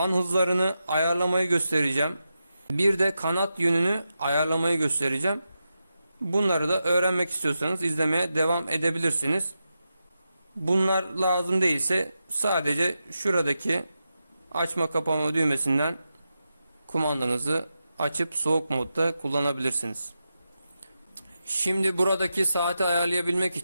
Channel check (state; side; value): inverted; both; correlation -0.89